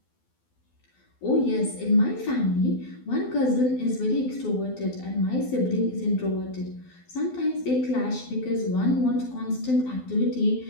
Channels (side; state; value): right; late; 12 ms